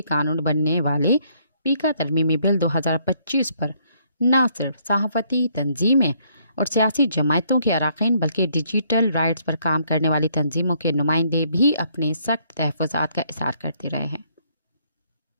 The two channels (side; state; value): both; inverted; correlation -0.68